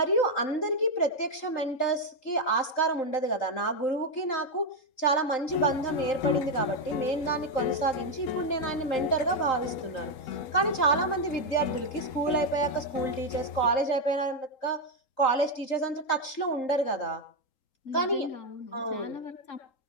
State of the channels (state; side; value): late; right; 3.8 ms